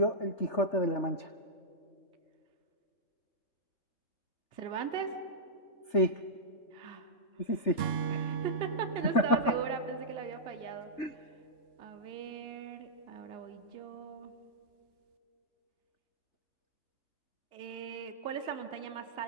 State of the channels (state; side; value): late; right; 3.4 ms